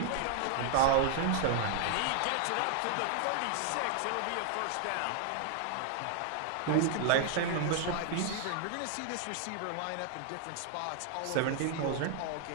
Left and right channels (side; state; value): both; different; correlation 0.00